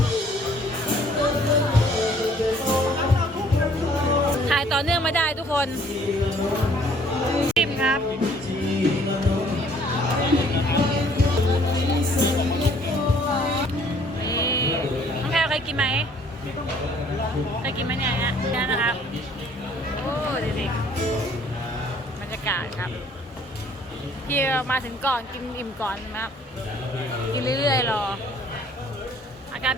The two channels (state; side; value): normal; both; correlation 0.59